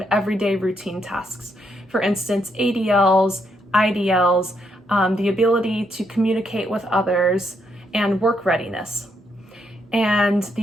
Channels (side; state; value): both; normal; correlation 0.77